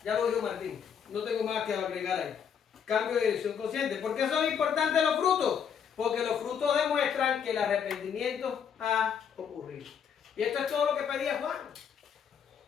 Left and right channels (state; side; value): quieter; right; 7.6 dB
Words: Ya lo dijo Martín. No tengo más que agregar ahí. Cambio de dirección consciente. ¿Por qué son importantes los frutos? Porque los frutos demuestran que el arrepentimiento ha ocurrido. Y esto es todo lo que pedía Juan.